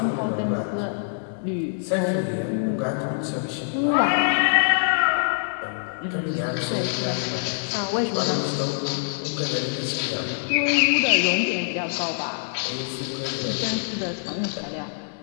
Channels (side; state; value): right; silent; digital silence